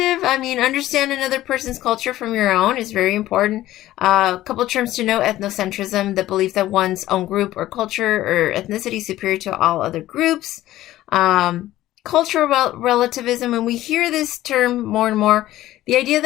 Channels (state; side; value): quieter; right; 15.0 dB